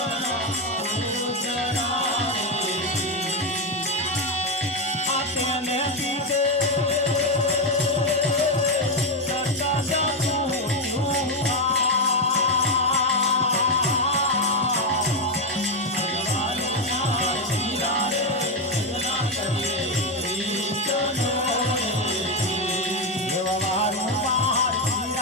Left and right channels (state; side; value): normal; both; correlation 0.07